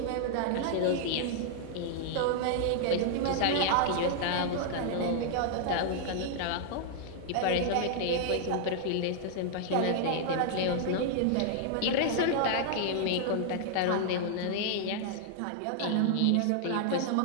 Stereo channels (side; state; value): both; different; correlation -0.01